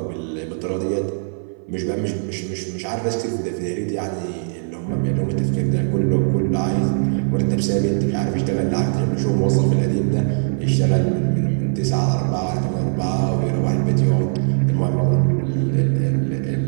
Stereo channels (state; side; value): silent; left; 57 dB below the other